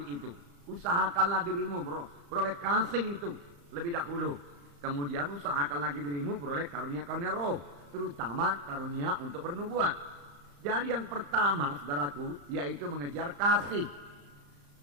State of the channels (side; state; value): left; late; 35 ms